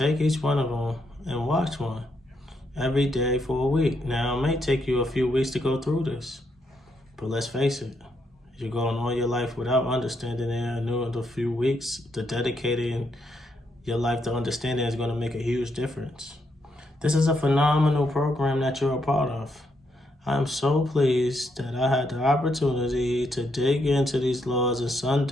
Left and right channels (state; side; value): normal; both; correlation 0.78